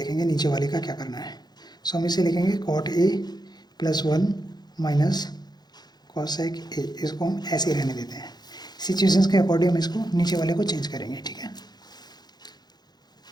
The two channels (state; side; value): late; right; 0.20 ms